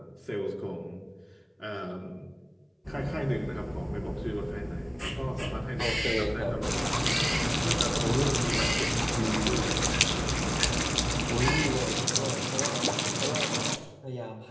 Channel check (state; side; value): identical; both; correlation 1.00